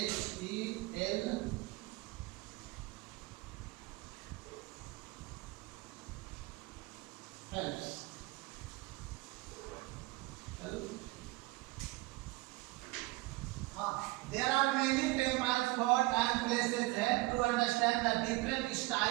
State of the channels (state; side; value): quieter; left; 21.4 dB